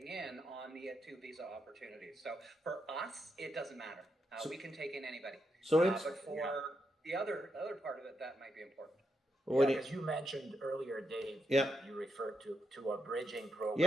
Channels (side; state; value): both; normal; correlation 0.82